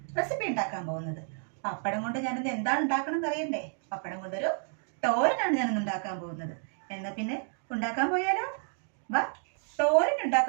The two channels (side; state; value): left; silent; 57 dB below the other